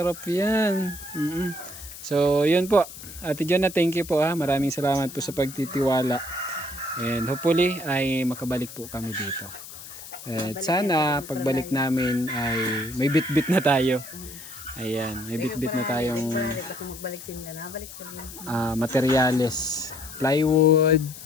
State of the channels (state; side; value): noise; left; hiss, 14 dB below the sound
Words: yan. So, yun po. Ate Jonah, thank you po ha. Maraming salamat po sa pagtitiwala. And hopefully, ay makabalik po kami dito. At sana, pagbalik namin ay may bit-bit na tayo. Ayan, may bit-bit na tayong Balik ako magbalik sila na. Balik ka rin. materyales. Plywood,